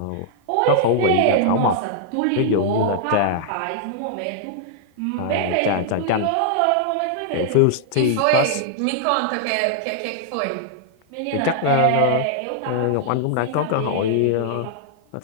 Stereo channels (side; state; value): both; different; correlation -0.01